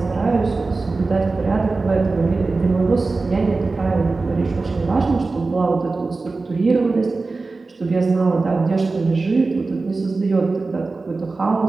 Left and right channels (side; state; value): left; quieter; 3.7 dB